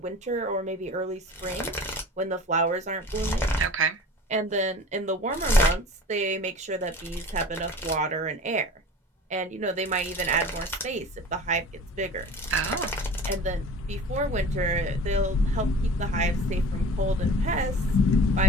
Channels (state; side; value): normal; both; correlation 0.41